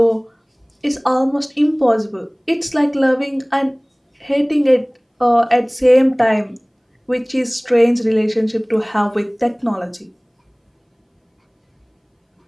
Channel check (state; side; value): identical; both; correlation 1.00